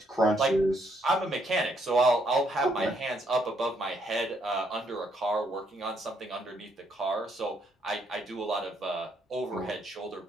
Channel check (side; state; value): both; normal; correlation 0.72